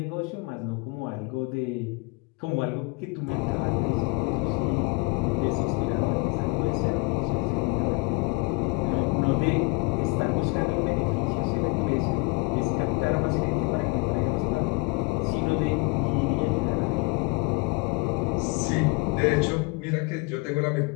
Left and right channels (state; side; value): quieter; right; 27.9 dB